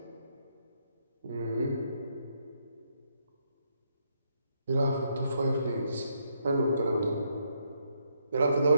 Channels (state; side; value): inverted; both; correlation -0.76